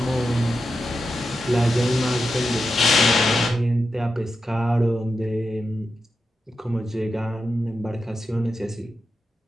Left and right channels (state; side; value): normal; both; correlation 0.89